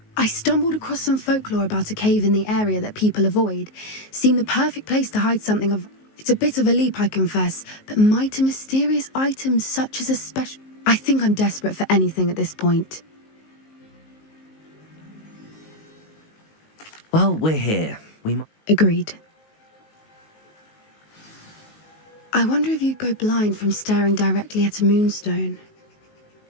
I stumbled across some folklore about a cave in the area that people avoid. Seemed the perfect place to hide something of... It's a bit of a leap, I confess, but mighty mysterious items such as a special... I think I'm desperate for anything at this point. Well, we're here. We might... Agreed. I wonder if you'd go blind from staring directly at a moonstone.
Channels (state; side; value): late; right; 19 ms